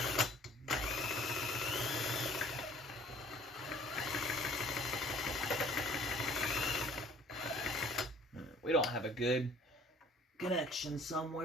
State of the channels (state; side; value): normal; both; correlation 0.54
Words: We don't have a good connection